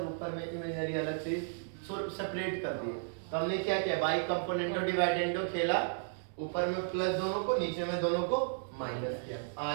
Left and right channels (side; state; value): left; silent; digital silence